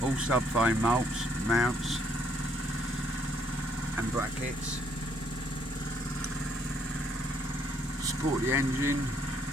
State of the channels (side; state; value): both; normal; correlation 0.68